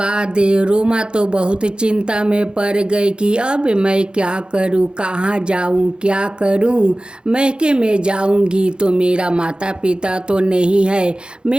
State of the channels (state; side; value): late; left; 0.051 ms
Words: रोमा तो बहुत चिंता में पड़ गई कि अब मैं क्या करूं, कहाँ जाऊं, क्या करूं। मैके में जाऊंगी तो मेरा माता पिता तो नहीं है,